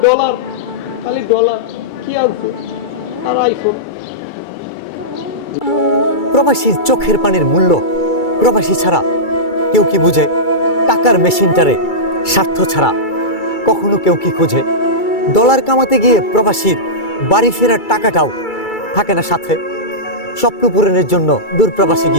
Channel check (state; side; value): late; right; 2.3 ms